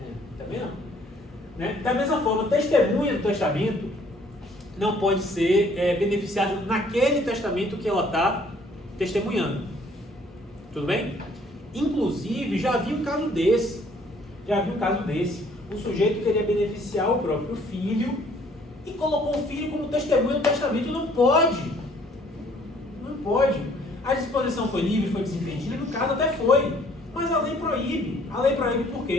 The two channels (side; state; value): both; normal; correlation 0.60